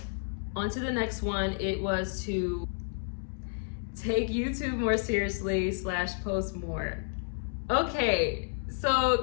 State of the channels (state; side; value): silent; right; digital silence